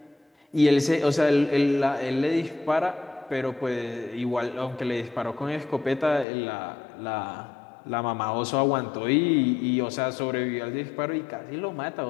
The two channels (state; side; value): drops out; right; at 6.2 s